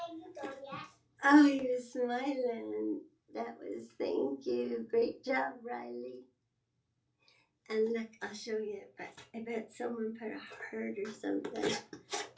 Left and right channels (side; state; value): both; identical; correlation 1.00